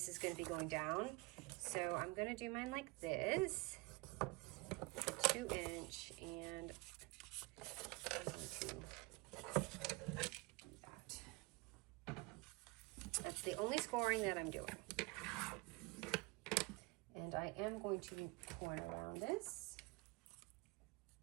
is going to be going down. So I'm going to do mine like this, with a 2-inch, and I'm going to do that. That's the only scoring that I'm doing. And I am going to be pouring around this.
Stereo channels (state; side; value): quieter; left; 25.1 dB